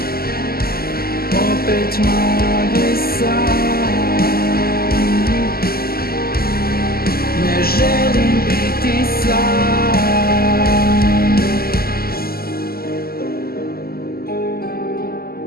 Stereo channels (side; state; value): right; late; 0.44 ms